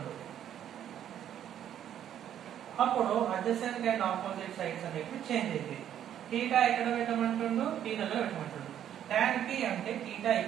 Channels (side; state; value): left; quieter; 10.3 dB